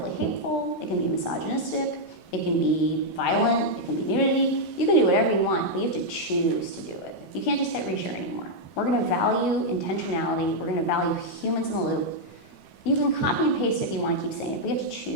hateful, it can be misogynistic, it can be violent, it can be nudity. You can do whatever you want, but you have to choose to do it. You can't just hit reshare anymore. We're going to value intentionality. We're going to value humans in the loop. You can copy and paste if you want to keep saying it, but you have to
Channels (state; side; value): late; right; 14 ms